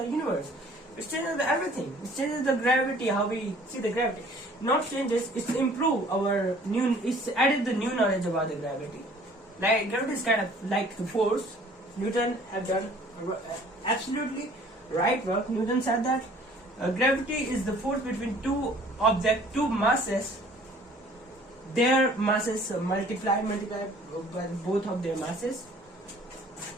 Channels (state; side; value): normal; both; correlation 0.53